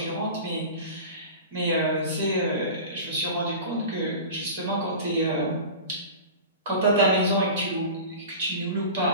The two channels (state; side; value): inverted; both; correlation -0.34